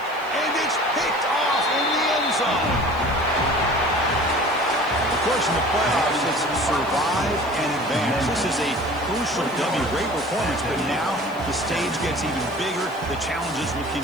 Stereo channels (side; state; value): left; noise; hiss, 24 dB below the sound